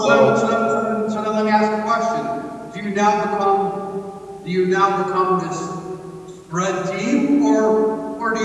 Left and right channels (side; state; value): both; identical; correlation 1.00